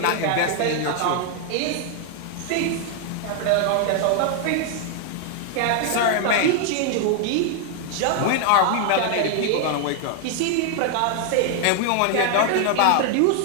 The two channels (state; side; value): different; both; correlation 0.00